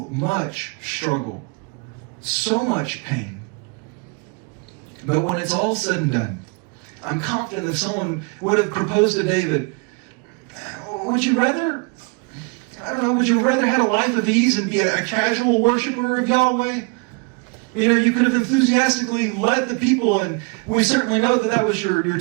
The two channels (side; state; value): left; quieter; 31.8 dB